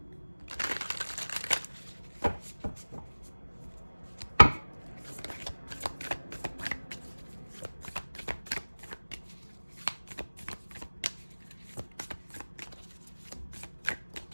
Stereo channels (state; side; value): inverted; both; correlation -1.00